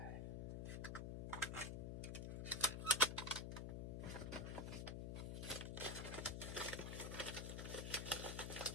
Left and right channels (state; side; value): noise; left; hum, 3 dB below the sound